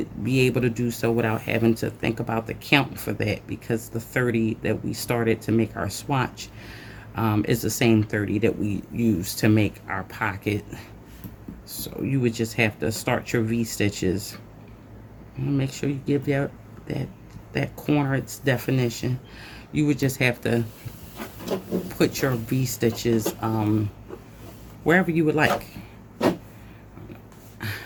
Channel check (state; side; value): identical; both; correlation 1.00